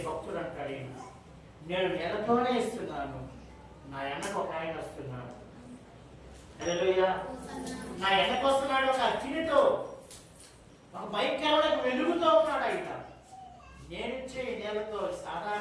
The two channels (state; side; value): identical; both; correlation 1.00